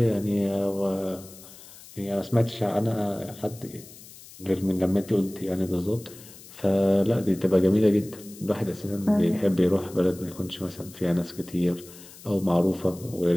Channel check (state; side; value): noise; left; hiss, 19 dB below the sound